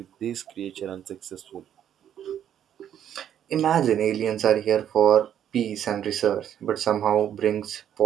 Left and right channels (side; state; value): left; quieter; 9.9 dB